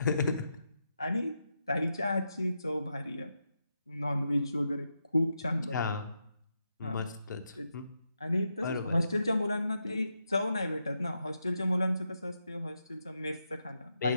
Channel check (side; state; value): both; inverted; correlation -0.85